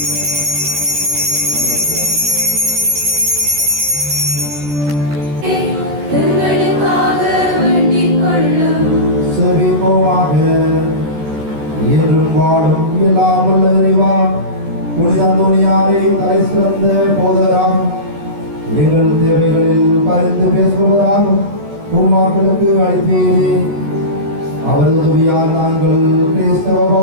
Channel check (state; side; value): late; left; 14 ms